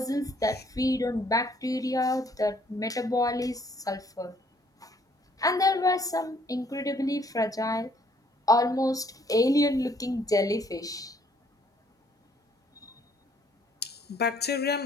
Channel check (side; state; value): both; normal; correlation 0.64